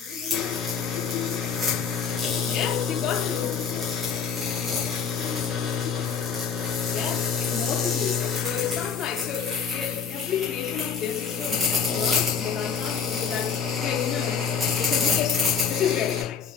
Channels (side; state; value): right; quieter; 6.6 dB